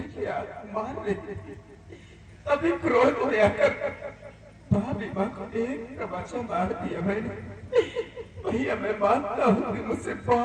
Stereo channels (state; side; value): identical; both; correlation 1.00